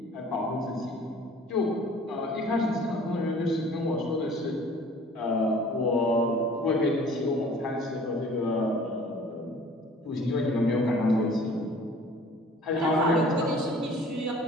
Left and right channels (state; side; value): normal; both; correlation 0.50